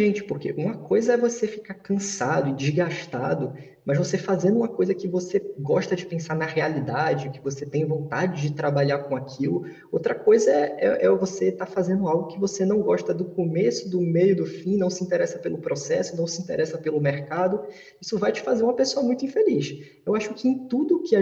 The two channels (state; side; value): identical; both; correlation 1.00